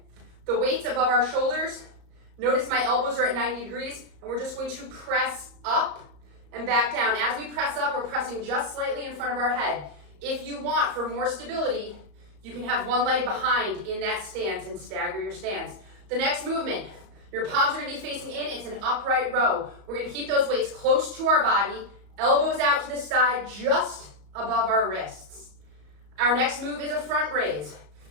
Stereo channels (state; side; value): late; left; 34 ms